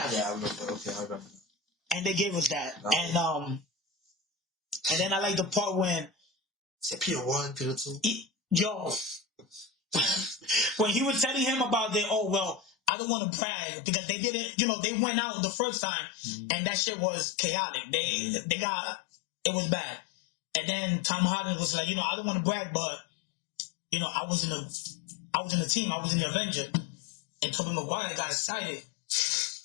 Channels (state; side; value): drops out; right; at 12.9 s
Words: Yeah, I remember. Okay, I remember. And they gave us that. And then I like the part when Peter 1, Peter 2. When he was telling him about I don't want to brag because they didn't, you know, they went out the first time and that shit was chaotic. They got, it was bad. And then Tom Holland was like, you know, I don't want to brag, but, you know, I was in the team, I was in the Avenger. And Tobey Maguire got excited.